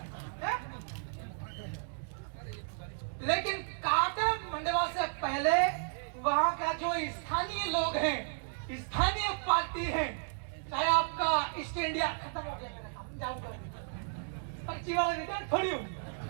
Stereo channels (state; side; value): silent; left; digital silence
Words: है? लेकिन काटा मंडवा से पहले वहां का जो स्थानीय लोग हैं, स्थानीय पार्टी है, चाहे आपका ईस्ट इंडिया खत्म हो गया मेरा काम जाऊंगा पर्ची वाला रिटर्न थोड़ी हूँ